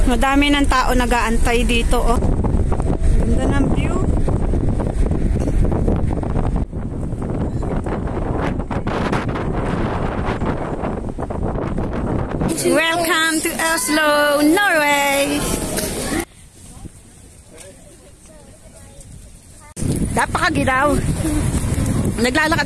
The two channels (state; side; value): identical; both; correlation 1.00